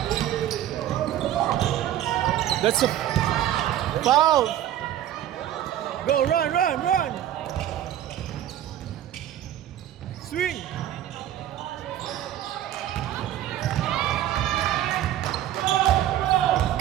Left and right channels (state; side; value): quieter; left; 12.0 dB